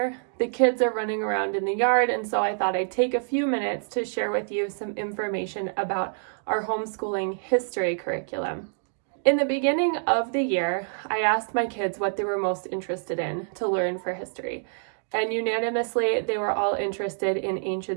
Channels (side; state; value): left; silent; digital silence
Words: The kids are running around in the yard, and so I thought I'd take a few minutes to share with you some information about our homeschooling history curriculum. In the beginning of the year, I asked my kids what they were most interested in to learn for history. And unanimously, they were all interested in